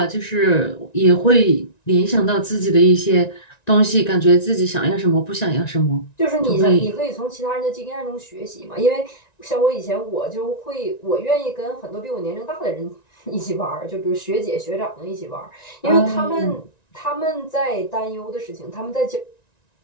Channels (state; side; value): late; right; 1.9 ms